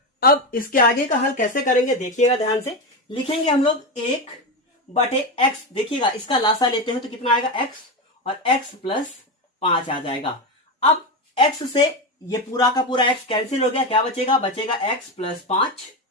अब इसके आगे का हल कैसे करेंगे देखिएगा ध्यान से, लिखेंगे हम लोग 1/x, देखिएगा इसका लासा लेते हैं तो कितना आएगा x, और x प्लस 5 आ जाएगा। अब x से ये पूरा का पूरा x कैंसिल हो गया, क्या बचेगा, बचेगा x प्लस 5,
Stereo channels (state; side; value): normal; both; correlation 0.15